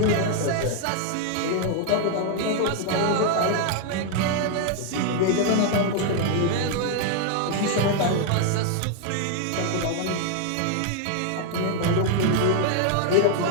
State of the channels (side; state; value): both; different; correlation 0.00